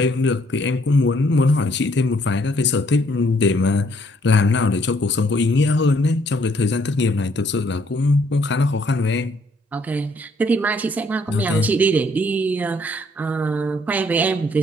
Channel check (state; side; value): normal; both; correlation 0.66